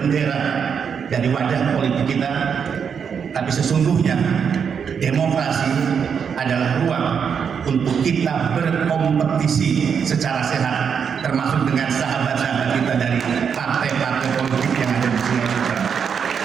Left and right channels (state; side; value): quieter; left; 6.9 dB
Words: dari wajah politik kita, tapi sesungguhnya demokrasi adalah ruang untuk kita berkompetisi secara sehat, termasuk dengan sahabat-sahabat kita dari partai-partai politik yang ada di Sulawesi Utara.